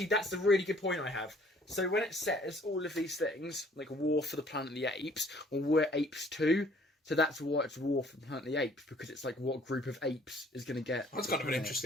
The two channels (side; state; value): both; normal; correlation 0.58